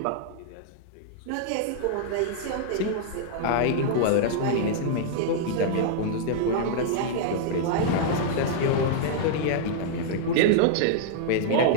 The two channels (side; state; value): both; different; correlation -0.01